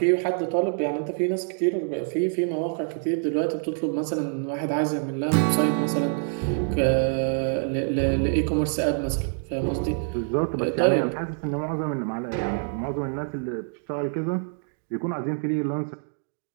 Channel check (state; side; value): silent; left; 61 dB below the other